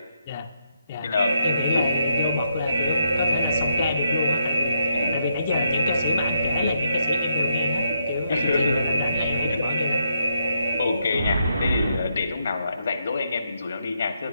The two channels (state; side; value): inverted; both; correlation -0.79